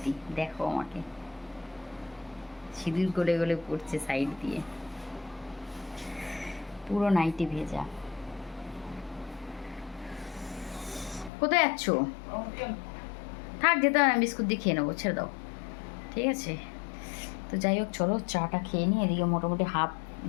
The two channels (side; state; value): right; drops out; at 11.3 s